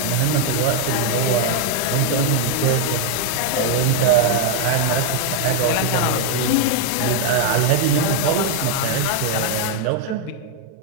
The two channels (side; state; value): both; different; correlation 0.00